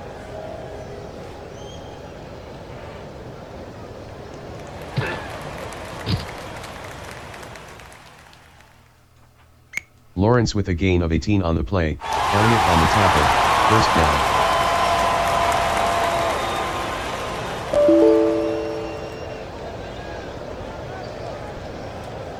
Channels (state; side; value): identical; both; correlation 1.00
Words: Lawrence with a gain of 18 on the play, Elliott on the tackle, first down.